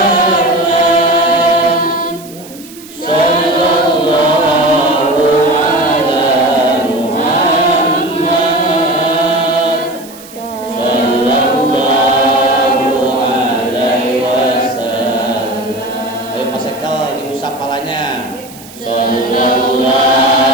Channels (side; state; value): right; noise; hiss, 19 dB below the sound